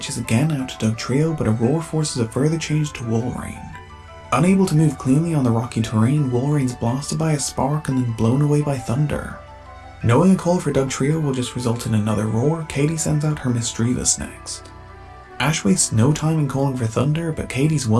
again out to Dugtrio, but Aurora forces a further change to Walrein. Unable to move cleanly on the rocky terrain, Wolverine's blasted by a spark and then blown away by thunder. Knowing a call for Dugtrio will just result in another roar, Katie sends out her Misdreavus next. Ash wastes no time in calling for thunder, but Katie's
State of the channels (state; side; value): identical; both; correlation 1.00